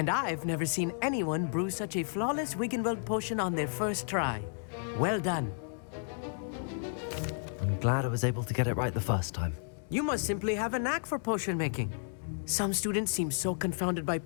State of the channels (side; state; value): right; silent; digital silence